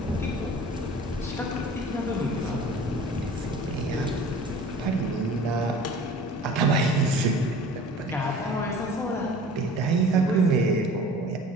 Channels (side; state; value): both; normal; correlation 0.44